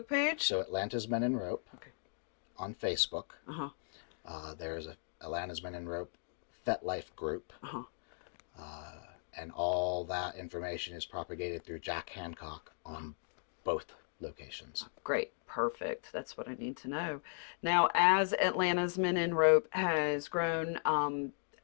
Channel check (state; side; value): silent; right; digital silence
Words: page? So Atlanta's Men in Rope. Okay. On Facebook. There's a Atlanta's Men in Rope FetLife group. And all that information is propagated through Jack Handcock on both locations. Great. Perfect. That's what I need to know. Now, as Atlanta's Men in Rope has grown,